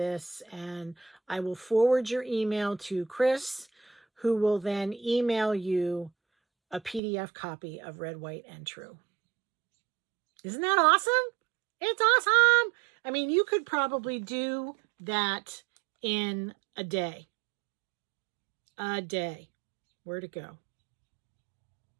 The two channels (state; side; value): drops out; left; at 7.0 s